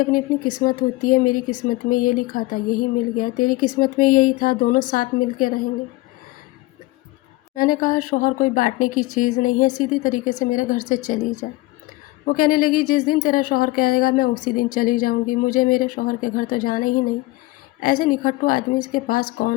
اپنی اپنی قسمت ہوتی ہے، میری قسمت میں یہ لکھا تھا یہی مل گیا، تیری قسمت میں یہی تھا دونوں ساتھ مل کے رہیں گے۔ میں نے کہا شوہر کوئی بانٹنے کی چیز نہیں ہے، سیدھی طریقے سے میرے گھر سے چلی جا۔ وہ کہنے لگی جس دن تیرا شوہر کہے گا میں اسی دن چلی جاؤں گی، مجھے میرے شوہر کے گھر تو جانا ہی نہیں، ایسے نکھٹو آدمی اس کے پاس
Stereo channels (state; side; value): quieter; right; 20.3 dB